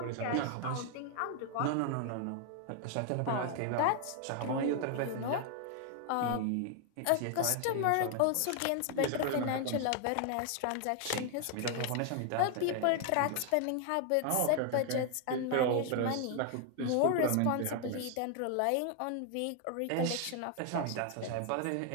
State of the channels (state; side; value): different; both; correlation 0.00